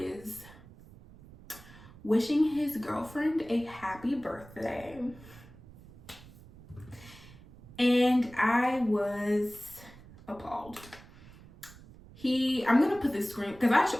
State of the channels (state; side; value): noise; right; rumble, 20 dB below the sound